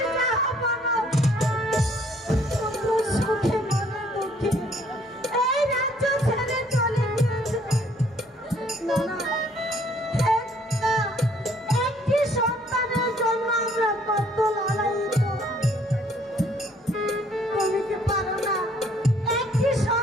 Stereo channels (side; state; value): both; normal; correlation 0.62